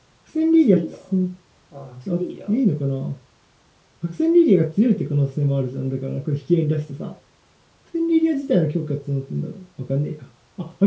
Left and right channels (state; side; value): identical; both; correlation 1.00